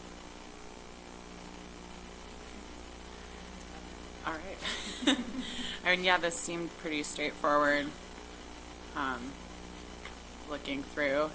All right. I mean, yeah, this seemed pretty straightforward, looking through,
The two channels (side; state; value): both; identical; correlation 1.00